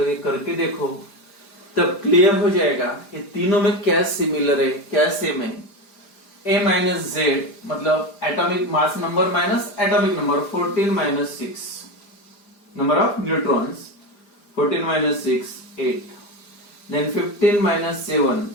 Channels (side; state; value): right; late; 5.0 ms